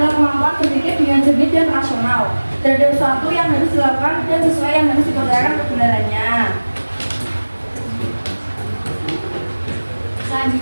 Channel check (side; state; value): both; inverted; correlation -1.00